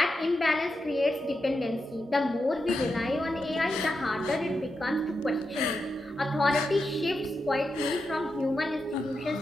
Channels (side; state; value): both; normal; correlation 0.87